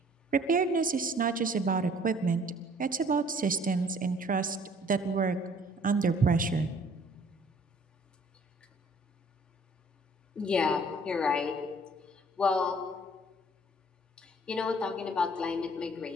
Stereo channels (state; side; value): normal; both; correlation 0.56